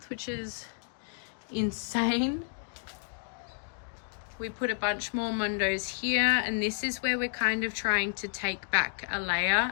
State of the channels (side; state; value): right; silent; digital silence